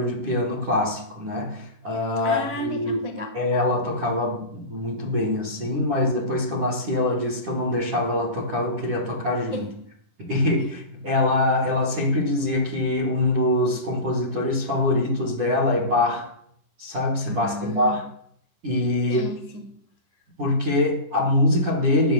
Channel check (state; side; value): late; left; 10 ms